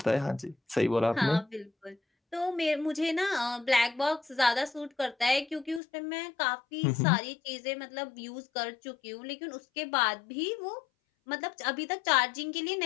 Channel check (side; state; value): right; drops out; at 5.8 s